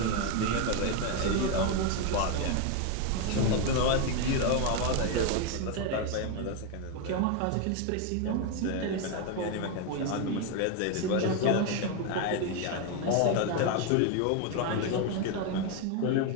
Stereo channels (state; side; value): different; both; correlation 0.02